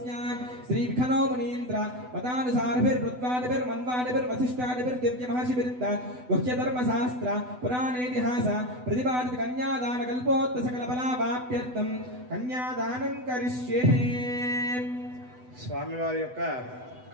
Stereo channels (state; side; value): late; left; 8.0 ms